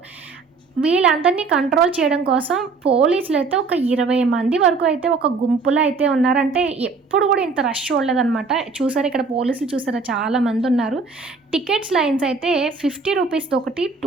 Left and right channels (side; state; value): left; quieter; 4.4 dB